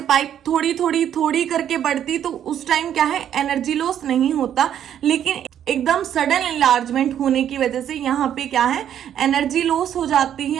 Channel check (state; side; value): quieter; left; 10.0 dB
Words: पाइप थोड़ी थोड़ी थोड़ी करके बढ़ती, तो उस टाइम क्या है, एनर्जी लॉस नहीं होता। लेकिन एकदम सडन इनलार्जमेंट होने की वजह से यहाँ पे क्या है, एनर्जी लॉस हो जाती